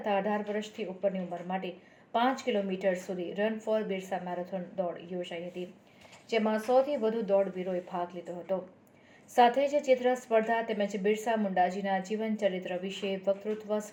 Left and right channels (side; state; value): both; identical; correlation 1.00